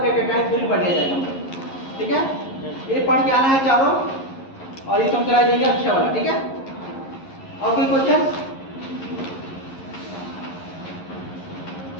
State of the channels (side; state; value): right; late; 11 ms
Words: पेपेटाइट थ्योरी पढ़ लिया जाएगा। ठीक है, ये पढ़ के आना है चारों, और ये तुम कराई देंगे अक्षय वाला। ठीक है, और कोई क्वेश्चन?